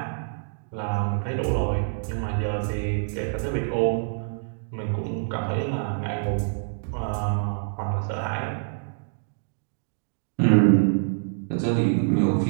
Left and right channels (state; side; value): silent; left; digital silence